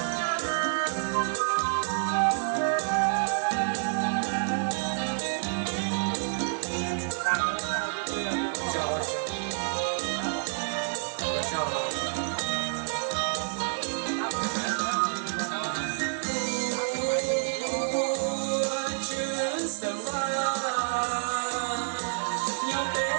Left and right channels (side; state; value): left; silent; digital silence